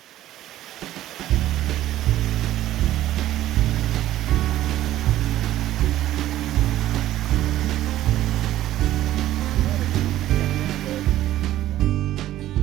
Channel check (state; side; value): quieter; left; 13.8 dB